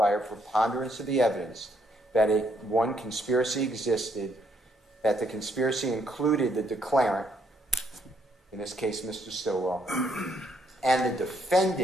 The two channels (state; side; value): normal; both; correlation 0.72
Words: a preponderance of the evidence that one conspiracy existed, that the conspiracy included the declarant, in this case Mr. Stillwell, and the